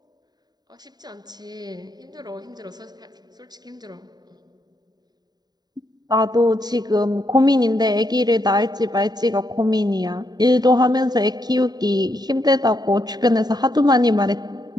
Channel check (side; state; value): left; late; 0.20 ms